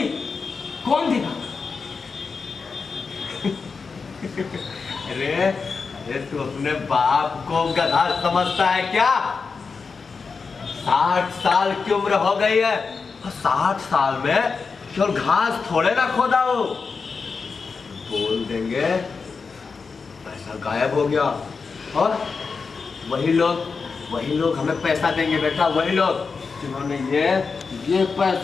कौन देगा? अरे तू अपने बाप को गधा समझता है क्या? 60 साल की उम्र हो गई है, और 60 साल में केवल घास थोड़े ना खोदा हो। बोल देंगे पैसा गायब हो गया, और वही लोग हमें पैसा देंगे बेटा। वही लोग जिन्होंने ये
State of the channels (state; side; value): quieter; right; 4.9 dB